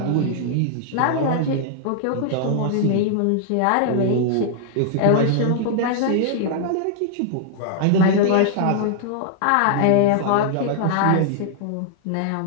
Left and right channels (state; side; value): different; both; correlation -0.01